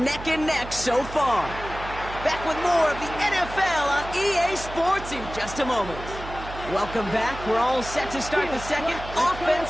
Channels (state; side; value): noise; right; hum, 12 dB below the sound